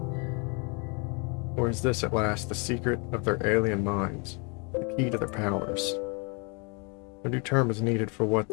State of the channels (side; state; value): right; quieter; 33.7 dB